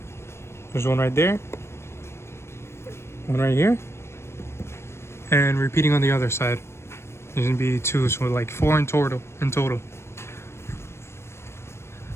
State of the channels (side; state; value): right; late; 0.13 ms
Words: There's one right there, one right here, and repeating on the other side. There's gonna be 2, so like 4 in total.